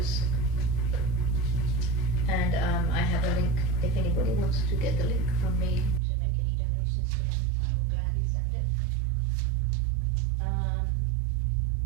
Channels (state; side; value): drops out; left; at 6.0 s